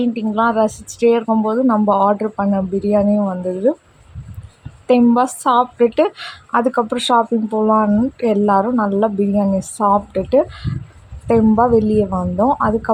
ரசிச்சுட்டே இருக்கும்போது நம்ம ஆர்டர் பண்ண பிரியாணியும் வந்தது. தெம்பாக சாப்பிட்டுட்டு அதுக்கப்புறம் ஷாப்பிங் போகலான்ட்டு எல்லோரும் நல்லா பிரியாணி சாப்பிட்டுட்டு தெம்பாக வெளியே வந்தோம்.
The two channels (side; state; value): both; identical; correlation 1.00